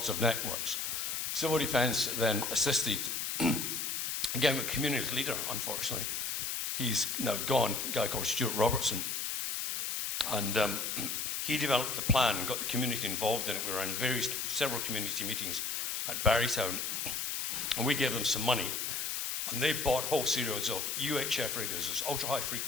of networks. Civil defence then assisted, again with community leader, unfortunately. He's now gone, a guy called Stuart Robertson. And he developed the plan and got the community involved in it. We were in several community meetings at Barrytown, and we gave them some money. And they bought whole series of UHF radios, those ultra-high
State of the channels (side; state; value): left; noise; hiss, 1 dB below the sound